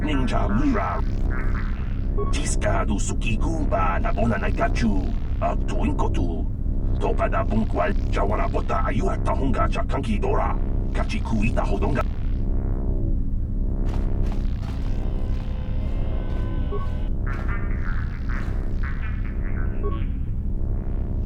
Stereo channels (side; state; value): both; identical; correlation 1.00